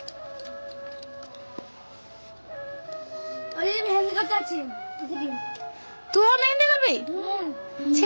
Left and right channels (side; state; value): both; inverted; correlation -1.00